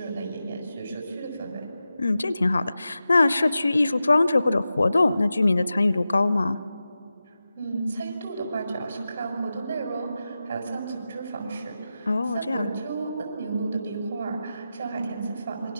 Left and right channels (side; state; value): both; inverted; correlation -0.92